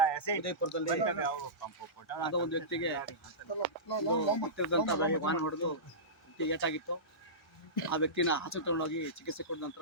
ಉದಯಪುರದಲ್ಲಿ ಯಾವುದೋ ಒಂದು ವ್ಯಕ್ತಿಗೆ ವಾಹನ ಹೊಡೆದು ಏಟಾಗಿತ್ತು. ಆ ವ್ಯಕ್ತಿನ ಆಸ್ಪತ್ರೆ ತಗೊಂಡೋಗಿ ಚಿಕಿತ್ಸೆ ಕೊಟ್ಟ ನಂತರ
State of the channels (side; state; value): both; normal; correlation -0.19